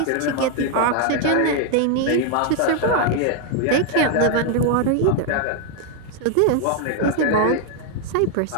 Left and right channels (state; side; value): different; both; correlation 0.00